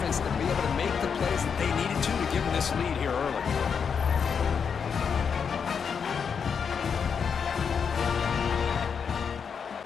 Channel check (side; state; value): right; quieter; 6.5 dB